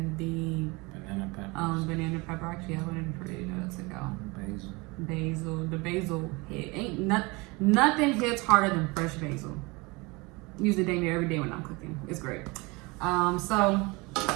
the banana pepper. Banana pepper. Actually, I wanted for you to go. Basil. The basil nothing hits harder than fresh basil. Use it dang near every day when I'm cooking. It's great. So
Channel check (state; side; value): quieter; left; 25.6 dB